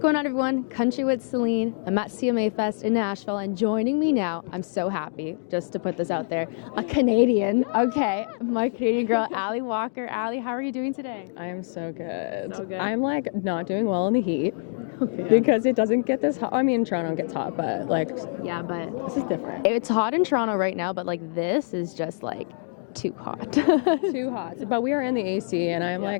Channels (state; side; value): silent; right; digital silence